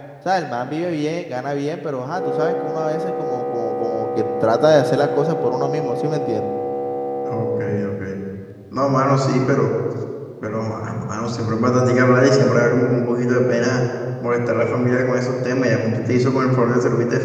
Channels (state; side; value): identical; both; correlation 1.00